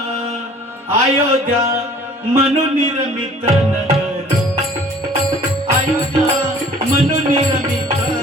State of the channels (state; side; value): normal; both; correlation 0.51